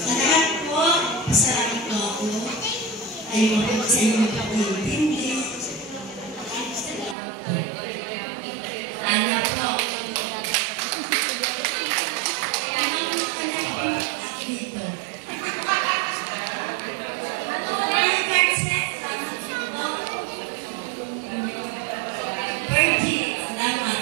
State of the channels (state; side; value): drops out; left; at 7.2 s